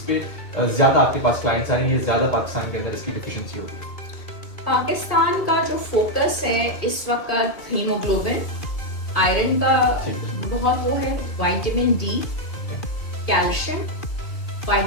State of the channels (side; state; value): right; late; 2.3 ms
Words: पे ज्यादा आपके पास क्लाइंट्स आएंगे, ज्यादा पाकिस्तान के अंदर इसकी डिफिशियंसी होगी। पाकिस्तान का जो फोकस है इस वक्त हीमोग्लोबिन, आयरन का बहुत वो है, vitamin D, calcium,